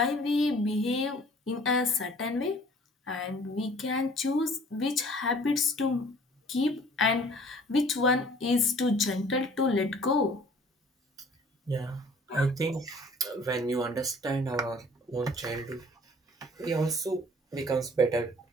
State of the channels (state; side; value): normal; both; correlation 0.52